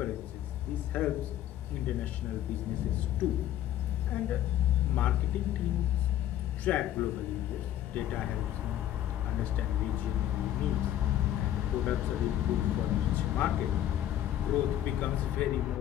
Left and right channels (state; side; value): quieter; right; 12.0 dB